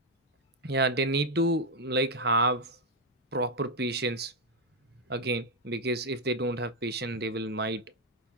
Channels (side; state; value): both; normal; correlation 0.02